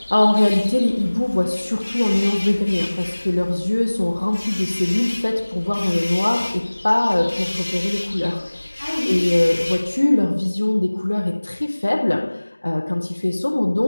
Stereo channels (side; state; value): both; inverted; correlation -1.00